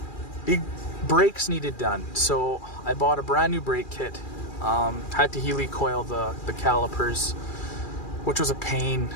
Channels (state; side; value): late; right; 2.4 ms